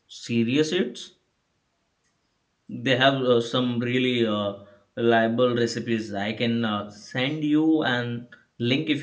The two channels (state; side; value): identical; both; correlation 1.00